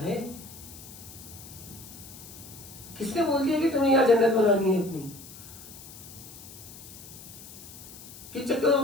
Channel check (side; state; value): left; noise; hiss, 16 dB below the sound